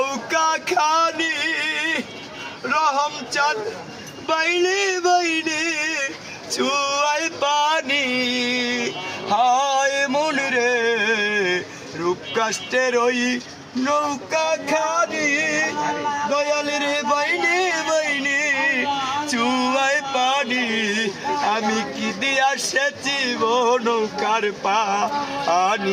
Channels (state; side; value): identical; both; correlation 1.00